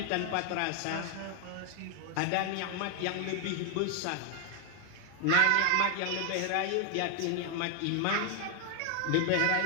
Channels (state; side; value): different; both; correlation 0.00